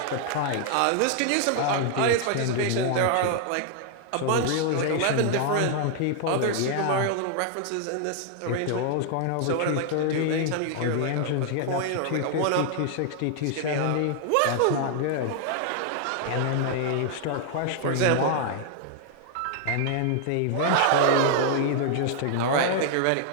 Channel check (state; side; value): different; both; correlation 0.00